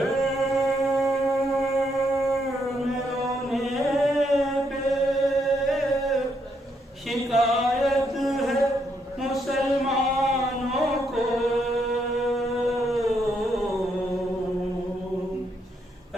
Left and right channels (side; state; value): both; normal; correlation 0.76